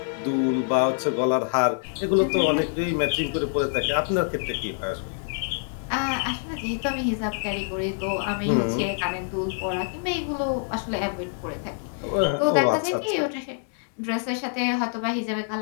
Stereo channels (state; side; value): silent; right; 61 dB below the other